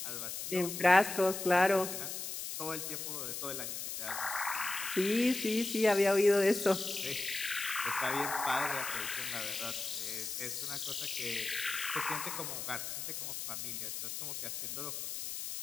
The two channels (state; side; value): noise; left; hiss, 5 dB below the sound